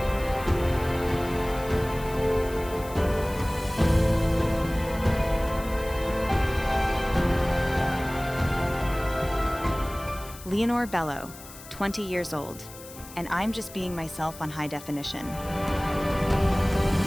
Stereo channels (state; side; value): noise; left; hiss, 17 dB below the sound